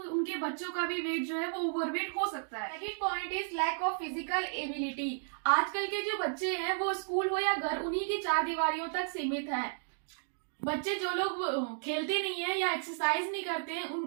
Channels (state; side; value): silent; left; digital silence